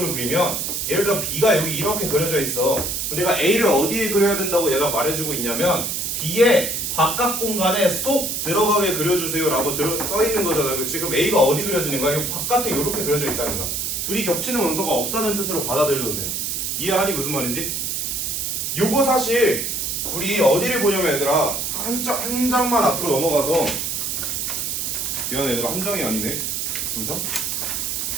그리면 예를 들어 B가 여기 이렇게 그려져 있어. 그럼 내가 A를 어디에 그려야 된다고 얘가 말해주고 있냐면 B의 바깥 공간에 쏙 들어가게 그려주세요 라고 써있는 거잖아. 그치? 그럼 A가 어디 그려지는 거야? 이 바깥에 이렇게 그려져 있다는 거야. 둘이 겹치는 원소가 없다는 뜻으로 받아들여도 돼요. 이해하니 무슨 말인지? 요거 사실 우리 어디를 보냐면 얘들아 한 장만 앞으로 넘어가서 미안해 얘들아 한 장이 아니네. 두 장?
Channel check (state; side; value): noise; right; hiss, 2 dB below the sound